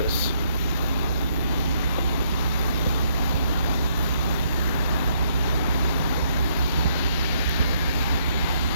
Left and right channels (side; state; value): both; inverted; correlation -0.70